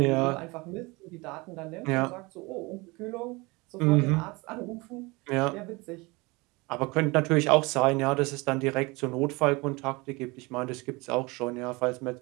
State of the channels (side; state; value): left; quieter; 24.9 dB